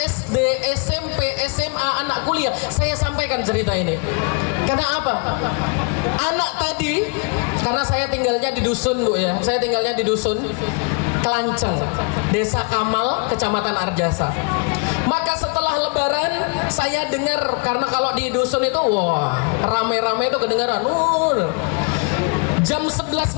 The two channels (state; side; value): quieter; right; 34.1 dB